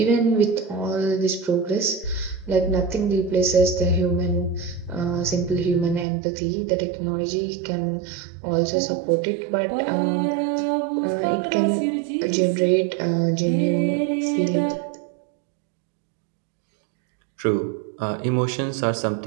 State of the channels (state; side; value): drops out; left; at 6.1 s